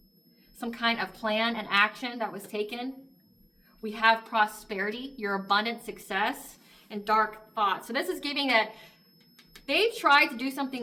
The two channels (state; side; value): identical; both; correlation 1.00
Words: Some kind of plan and action that was taken. We have prosperity, your abundant success. and dark thoughts. So this is giving that they tried to do